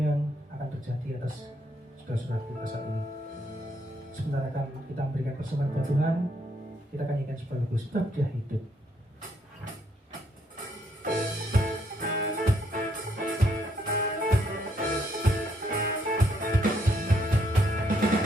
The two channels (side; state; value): both; normal; correlation 0.72